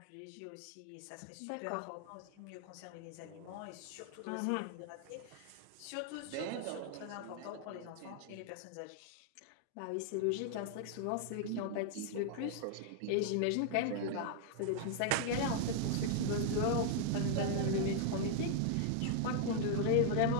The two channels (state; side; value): different; both; correlation 0.00